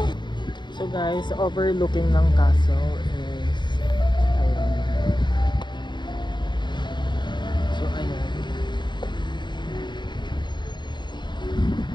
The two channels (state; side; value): late; right; 0.22 ms